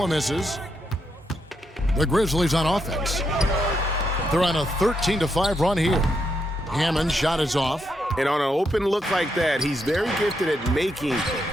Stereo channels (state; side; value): normal; both; correlation 0.80